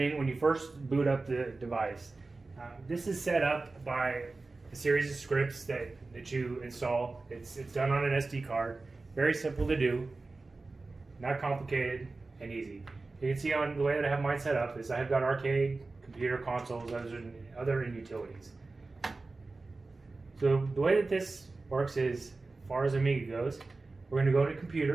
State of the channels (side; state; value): left; quieter; 3.5 dB